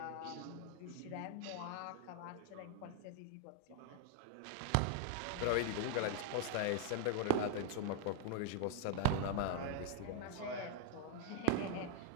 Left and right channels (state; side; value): different; both; correlation 0.00